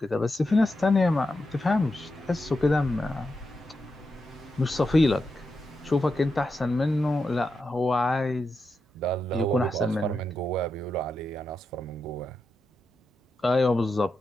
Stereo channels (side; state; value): both; normal; correlation 0.87